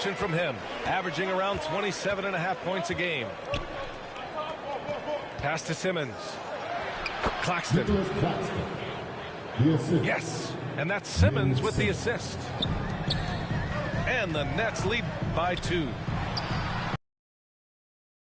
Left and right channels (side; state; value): both; identical; correlation 1.00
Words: from him, averaging around 27.5 points a game. Pass to Simmons. Claxton. Yes, and that's Simmons with the assist. And the Nets lead by 2.